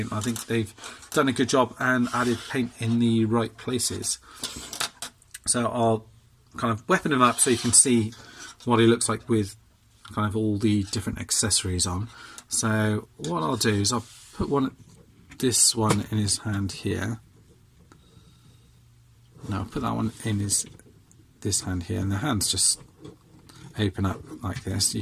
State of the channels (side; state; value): both; identical; correlation 1.00